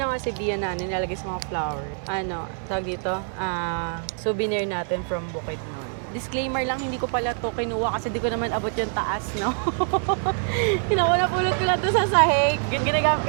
si Bia na nilalagay sa mga flower. Ano, tawag dito? Souvenir natin from Bukidnon. Disclaimer lang, hindi ko pala to kinuha kasi di ko naman abot yung taas, no? Napulot ko na to sa sahig.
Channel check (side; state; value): left; silent; 62 dB below the other